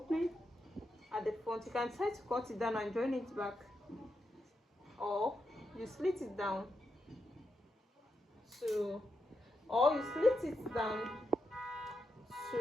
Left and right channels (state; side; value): normal; both; correlation 0.85